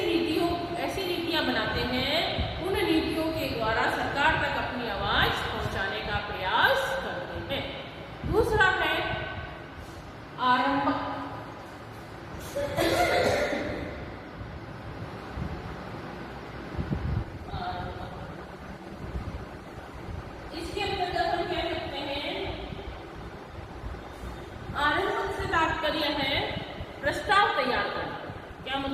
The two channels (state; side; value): identical; both; correlation 1.00